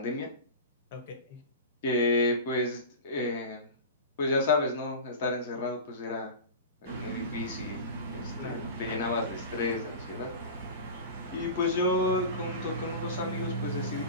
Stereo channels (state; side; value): inverted; both; correlation -0.30